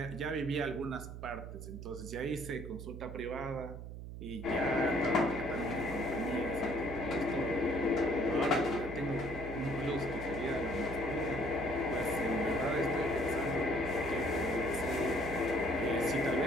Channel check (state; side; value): noise; right; hum, 9 dB below the sound